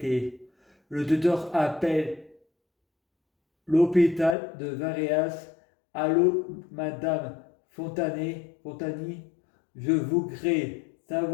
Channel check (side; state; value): right; drops out; at 4.4 s